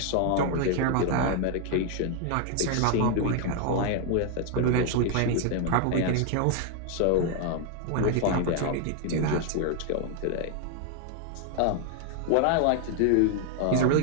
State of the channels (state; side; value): different; both; correlation 0.00